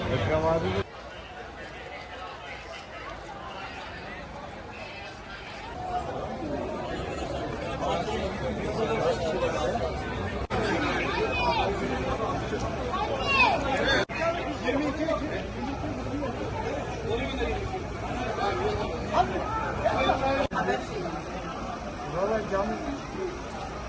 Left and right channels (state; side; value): identical; both; correlation 1.00